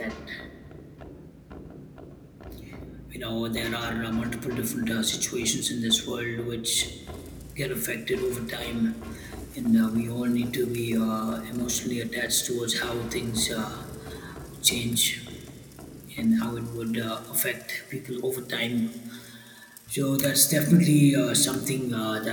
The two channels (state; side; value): identical; both; correlation 1.00